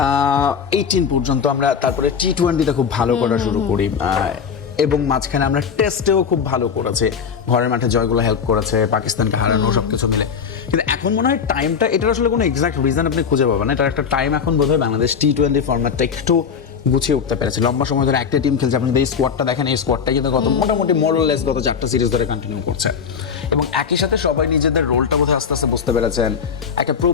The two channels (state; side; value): quieter; right; 6.6 dB